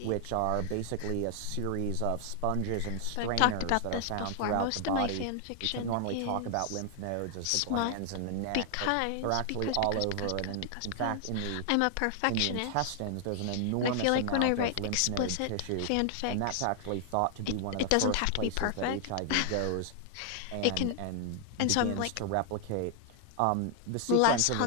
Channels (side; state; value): both; different; correlation 0.00